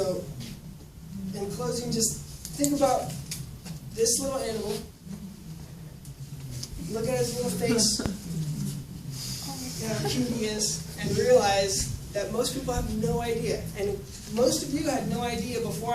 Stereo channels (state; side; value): identical; both; correlation 1.00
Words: in closing, just think about this little animal. Look at his little face, how cute he is, and realize that most people have no idea. And most of you had no idea before